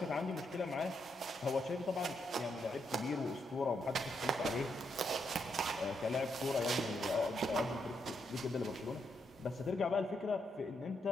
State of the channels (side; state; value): both; normal; correlation 0.79